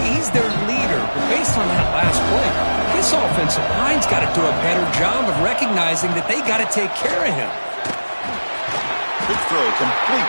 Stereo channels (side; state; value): both; inverted; correlation -1.00